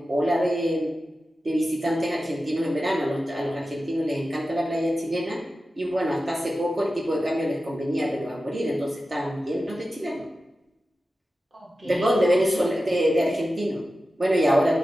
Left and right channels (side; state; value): both; normal; correlation 0.93